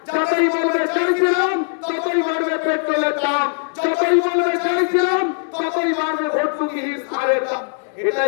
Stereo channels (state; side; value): silent; right; 62 dB below the other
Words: যতই বলবে চাইছিলাম ততই বাড়বে পেট্রোলের দাম, যতই বলবে চাইছিলাম ততই বাড়বে ভর্তুকিহীন সারের দাম।